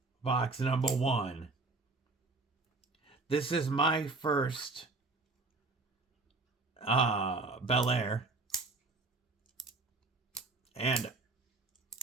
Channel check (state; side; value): quieter; left; 3.5 dB